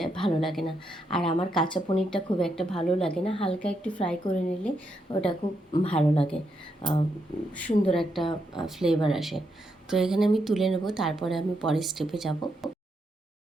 ভালো লাগে না। আর আমার কাঁচা পনিরটা খুব একটা ভালো লাগে না, হালকা একটু ফ্রাই করে নিলে ওটা খুব ভালো লাগে, সুন্দর একটা ফ্লেভার আসে। তো এখানে আমি তুলে নেব, তারপরে আমি পরের স্টেপে যাব।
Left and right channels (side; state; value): both; normal; correlation 0.80